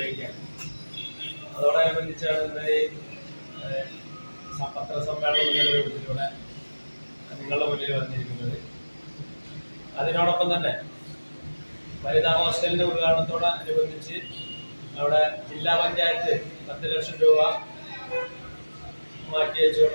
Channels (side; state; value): both; inverted; correlation -1.00